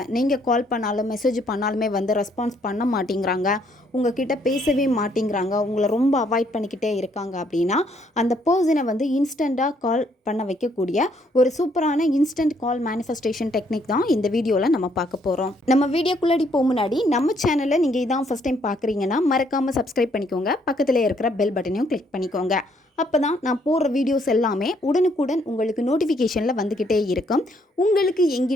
நீங்கள் கால் பண்ணாலும் மெசேஜ் பண்ணாலுமே ரெஸ்பான்ஸ் பண்ண மாட்டேங்கிறாங்க, உங்ககிட்ட பேசவே மாட்டேங்கிறாங்க, உங்களை ரொம்ப அவாய்ட் பண்ணிக்கிட்டே இருக்காங்க அப்படின்னா, அந்த பர்சனை இன்ஸ்டண்ட்டாக கால் பண்ண வைக்கக்கூடிய ஒரு சூப்பரான இன்ஸ்டன்ட் கால் மேனிஃபெஸ்டேஷன் டெக்னிக் தான் இந்த வீடியோவில் நம்ம பார்க்க போகிறோம். நம்ம வீடியோக்குள்ளாடி போக முன்னாடி நம்ம சேனலை நீங்கள் இதான் ஃபஸ்ட் டைம் பார்க்குறீங்கன்னா மறக்காமல் சப்ஸ்கிரைப் பண்ணிக்கோங்க. பக்கத்தில் இருக்கிற பெல் பட்டனையும் கிளிக் பண்ணிக்கோங்க. அப்போ தான் நான் போடுற வீடியோஸ் எல்லாமே உடனுக்குடன் உங்களுக்கு நோட்டிஃபிகேஷனில் வந்துக்கிட்டே இருக்கும். உங்களுக்கு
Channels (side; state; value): both; normal; correlation 0.69